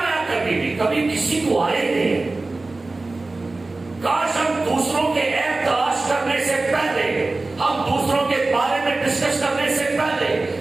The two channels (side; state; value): left; quieter; 3.3 dB